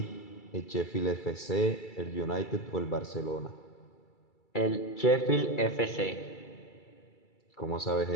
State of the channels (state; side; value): late; right; 2.3 ms